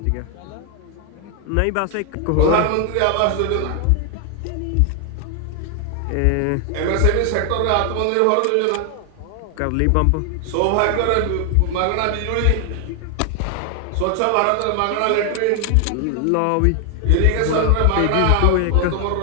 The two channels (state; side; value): different; both; correlation 0.00